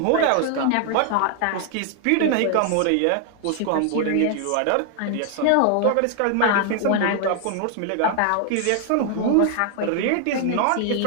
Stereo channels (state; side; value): different; both; correlation 0.00